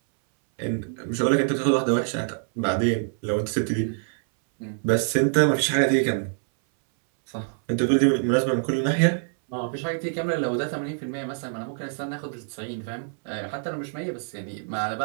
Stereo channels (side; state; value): left; silent; 61 dB below the other